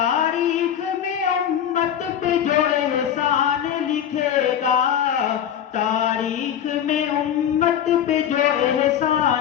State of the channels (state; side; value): quieter; right; 9.5 dB